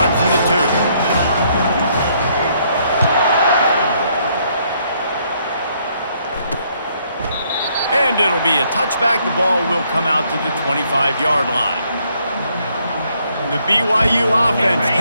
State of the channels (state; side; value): inverted; both; correlation -0.70